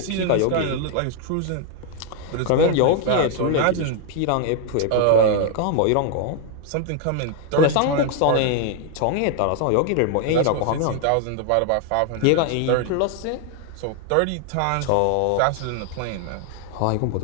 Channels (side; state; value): both; different; correlation 0.00